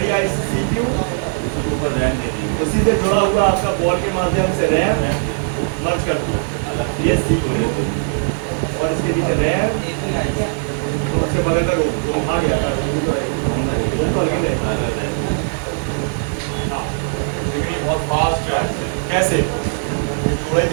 आईसी CPU, ऊपर रैम दे दी। उसी से जुड़ा हुआ आपका बॉल के माध्यम से रैम मर्ज कर दो, ये CPU, और इसके नीचे रैम, तो उसके बगल में रोम आ गया था, रोम तो अलग है। हाँ, लेकिन ये बहुत फास्ट है। कैसे? जोड़े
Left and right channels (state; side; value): silent; left; digital silence